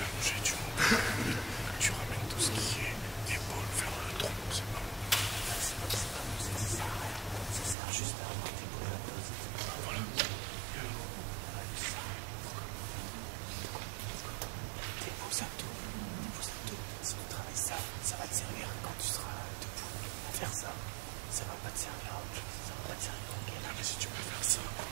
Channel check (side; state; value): left; drops out; at 7.8 s